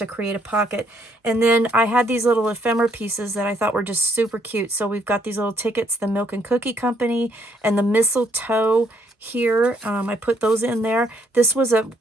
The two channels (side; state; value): both; normal; correlation 0.69